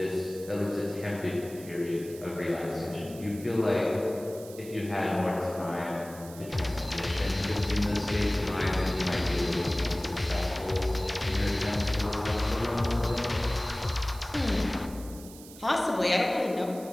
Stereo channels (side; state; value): right; noise; hiss, 18 dB below the sound